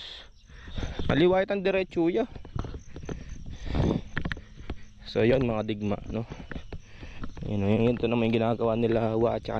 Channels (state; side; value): identical; both; correlation 1.00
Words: Maliwait ang diretso ya. So yun mga digma yun to naman yung ginagawa nila at saka